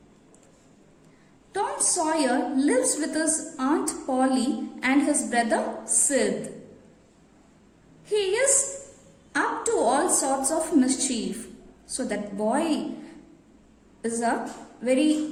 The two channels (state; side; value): identical; both; correlation 1.00